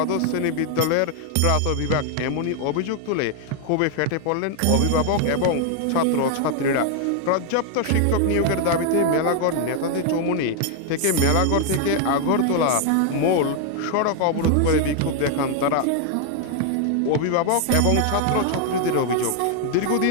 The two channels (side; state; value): both; different; correlation 0.00